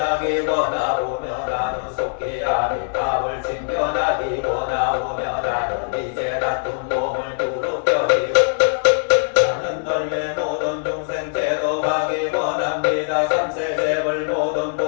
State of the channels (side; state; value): right; silent; 65 dB below the other